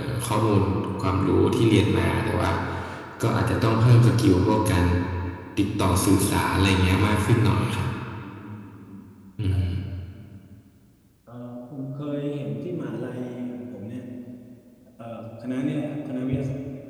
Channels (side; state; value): both; identical; correlation 1.00